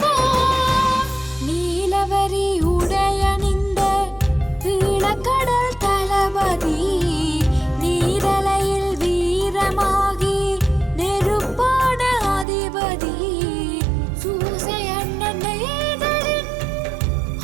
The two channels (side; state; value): left; drops out; at 12.5 s